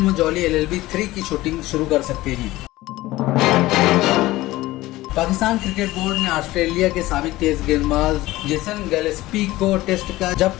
जॉली LLB 3 की शूटिंग शुरू कर सकते हैं। पाकिस्तान क्रिकेट बोर्ड ने ऑस्ट्रेलिया के साबिक तेज गेंदबाज जेसन गिलेस्पी को टेस्ट का,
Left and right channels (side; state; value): right; quieter; 17.7 dB